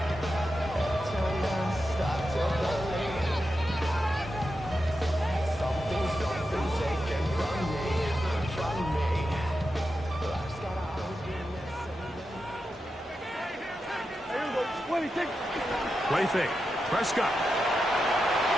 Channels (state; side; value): normal; both; correlation 0.89